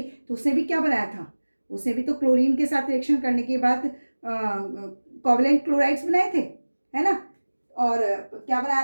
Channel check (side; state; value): both; inverted; correlation -1.00